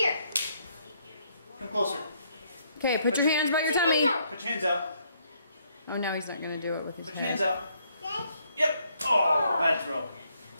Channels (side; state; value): both; inverted; correlation -0.71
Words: Come closer. Okay, put your hands by your Put your hands tummy. out. Put your hands out. Oh, now he's not going to do it with his Put your hands head. out. Yep. Oh, bad throw.